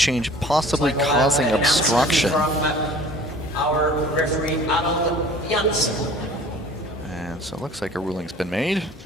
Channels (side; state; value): both; normal; correlation 0.47